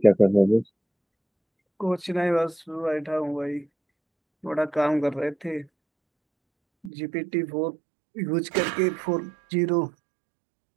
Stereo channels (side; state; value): left; drops out; at 6.9 s